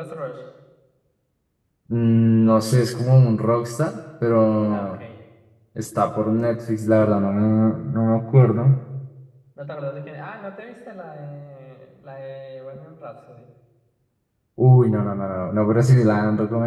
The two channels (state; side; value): identical; both; correlation 1.00